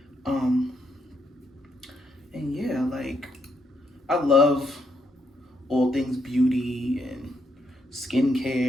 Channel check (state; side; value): normal; both; correlation 0.77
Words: And yeah, like, I love all things beauty and